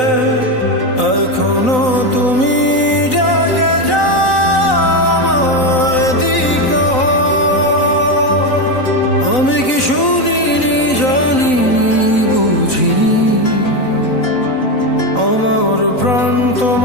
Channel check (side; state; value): right; late; 3.9 ms